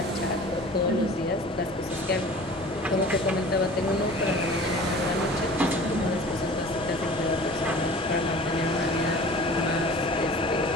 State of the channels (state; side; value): noise; left; hum, 23 dB below the sound